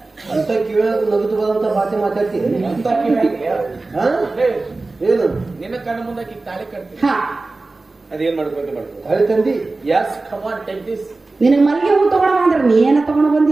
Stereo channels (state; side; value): quieter; left; 3.4 dB